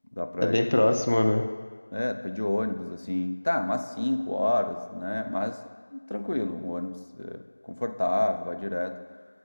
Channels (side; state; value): both; inverted; correlation -1.00